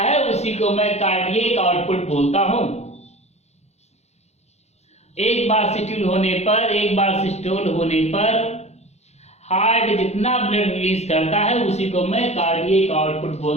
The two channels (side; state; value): right; late; 0.32 ms